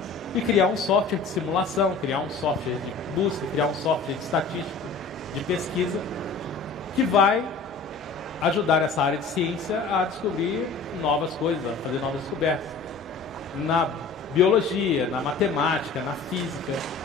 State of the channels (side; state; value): right; quieter; 4.4 dB